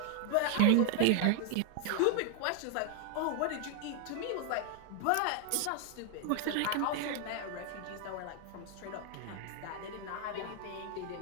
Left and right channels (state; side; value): different; both; correlation 0.00